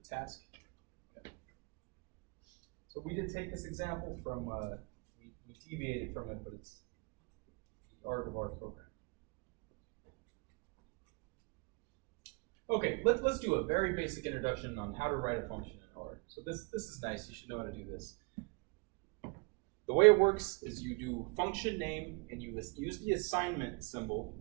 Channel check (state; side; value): quieter; left; 31.0 dB